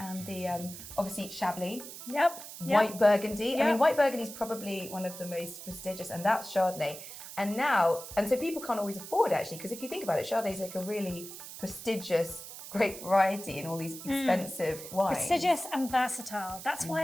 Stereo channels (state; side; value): noise; right; hiss, 12 dB below the sound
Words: the, obviously, Chablis. White Burgundy. Yep. I mean, White Burgundy is probably one of the most prestigious, and that's Chardonnay. And so people can't always afford actually, because if you think about it, Chardonnay is like a really prestigious, great variety in all these expensive wines. Prestigious and versatile. That's